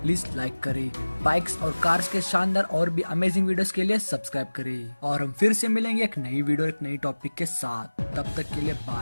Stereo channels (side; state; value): both; inverted; correlation -1.00